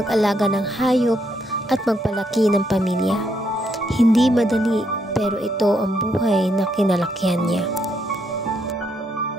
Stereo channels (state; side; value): normal; both; correlation 0.76